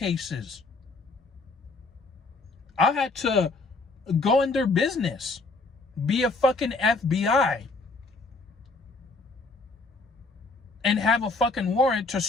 I had to go in their business, be a fucking FBI, and have a fucking warrant to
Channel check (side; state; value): right; quieter; 3.5 dB